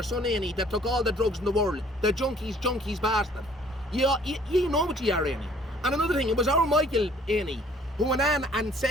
son Eney, that took all the drugs in the world, the junkies bastard. You know what you are, Eney. And another thing, it was our Michael Eney who went on and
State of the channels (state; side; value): normal; both; correlation 0.57